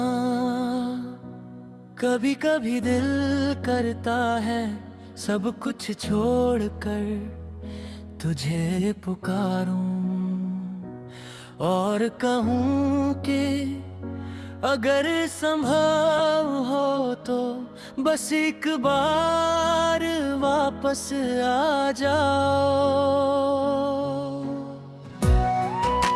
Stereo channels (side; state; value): both; identical; correlation 1.00